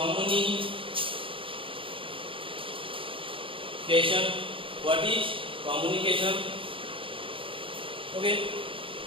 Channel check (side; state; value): left; late; 0.25 ms